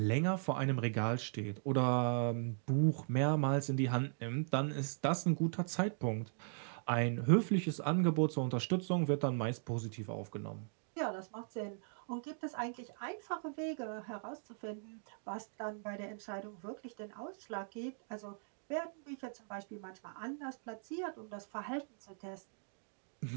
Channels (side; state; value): left; silent; digital silence